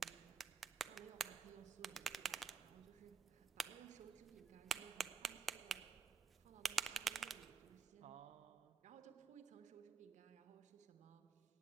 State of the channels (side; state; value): left; quieter; 5.4 dB